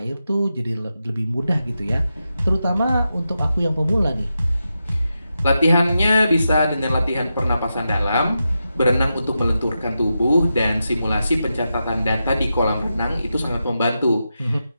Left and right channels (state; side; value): inverted; both; correlation -0.88